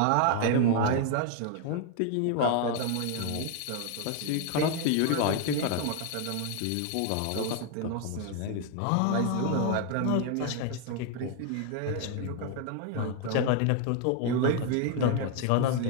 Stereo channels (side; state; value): both; different; correlation 0.01